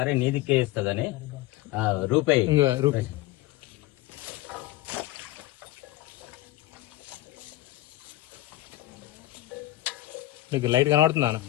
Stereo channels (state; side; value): quieter; right; 17.1 dB